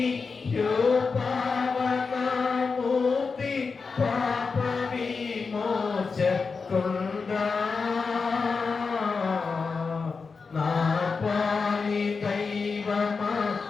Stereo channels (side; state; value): right; quieter; 4.8 dB